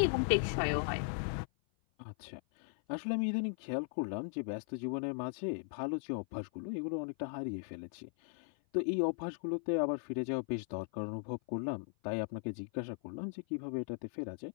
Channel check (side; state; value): right; silent; 53 dB below the other